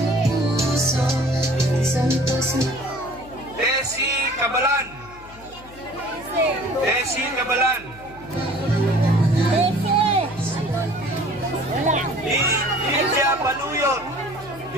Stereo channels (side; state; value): left; noise; hum, 20 dB below the sound